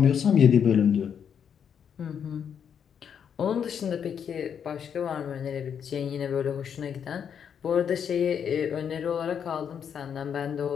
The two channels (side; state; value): right; quieter; 7.9 dB